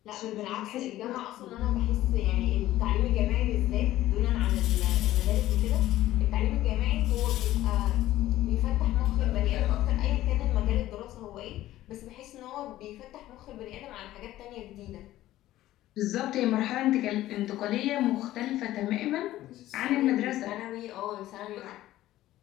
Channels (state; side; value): quieter; right; 14.8 dB